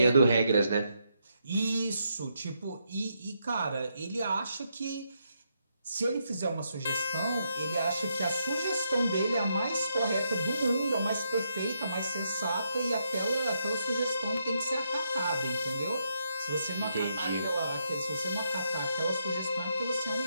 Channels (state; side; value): inverted; both; correlation -0.79